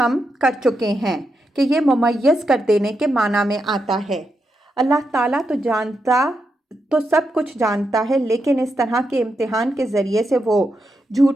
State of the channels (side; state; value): both; normal; correlation 0.84